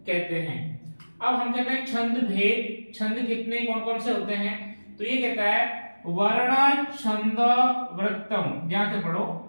कहते हैं। अब हम कहते हैं छंद भेद। छंद कितने, कौन कौन से होते हैं। तो ये कहता है वर्ण छंद वृत्तम, ध्यान से पढ़ो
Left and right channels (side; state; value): both; inverted; correlation -1.00